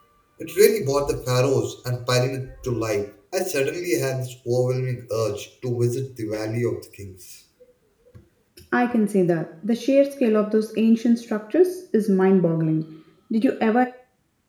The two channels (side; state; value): both; identical; correlation 1.00